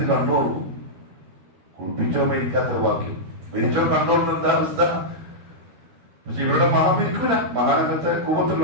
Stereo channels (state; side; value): late; left; 12 ms